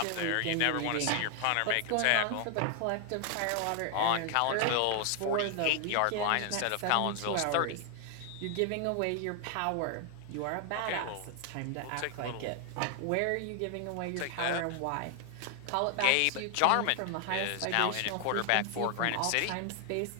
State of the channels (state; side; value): different; both; correlation 0.00